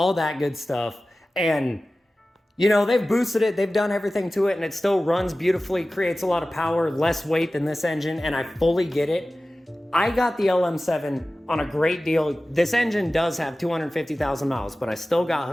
that good stuff. And you know, they've boosted it, they've done everything to it, and it still runs beautifully, creates a lot of power, less weight than this engine, and I fully get it. I got the LM7 on a great deal. This engine does have 250,000 miles, but I still got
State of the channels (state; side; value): normal; both; correlation 0.96